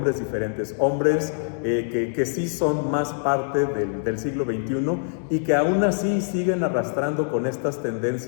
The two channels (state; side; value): silent; right; digital silence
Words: diferentes, hombres que sí son más parte del siglo XXI y que aún así siguen arrastrando con estas